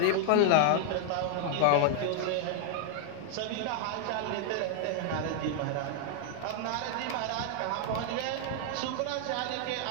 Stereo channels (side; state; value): both; different; correlation 0.00